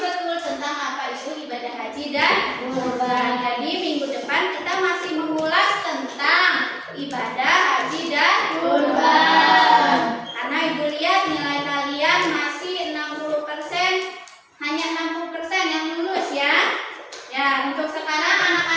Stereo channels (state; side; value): identical; both; correlation 1.00